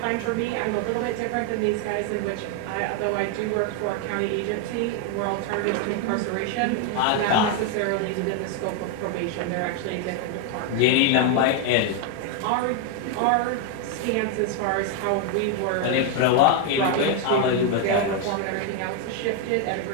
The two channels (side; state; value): both; different; correlation 0.01